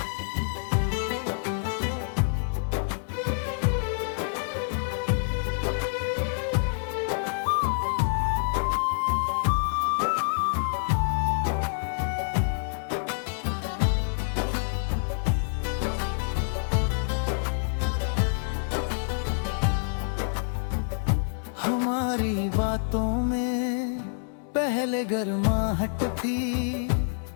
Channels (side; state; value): right; silent; digital silence